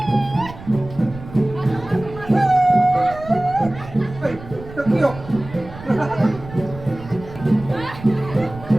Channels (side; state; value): right; noise; rumble, 15 dB below the sound